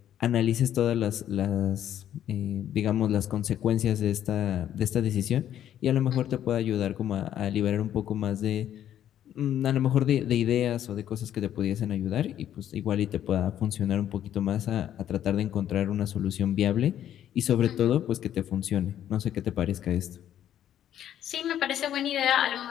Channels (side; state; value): right; quieter; 10.9 dB